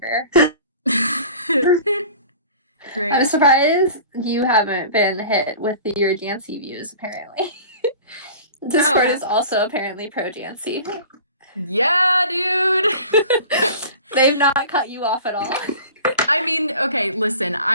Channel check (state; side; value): inverted; both; correlation -0.41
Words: I'm Great. surprised you haven't been hit with your Jancy views, apparently. Discord Oh, is also apparently pro Jancy. yeah, dude. They've not cut you off at all. I mean, okay, listen,